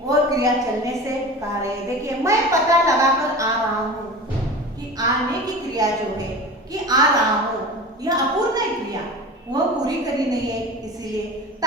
वो क्रिया चलने से कह रहे हैं। देखिए, मैं पता लगाकर आ रहा हूँ, कि आने की क्रिया जो है, कि आ रहा हूँ, यह अपूर्ण है क्रिया, वह पूरी करी नहीं है, इसीलिए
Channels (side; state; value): both; normal; correlation 0.34